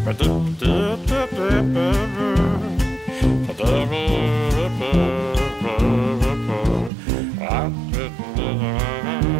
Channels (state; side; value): drops out; left; at 6.9 s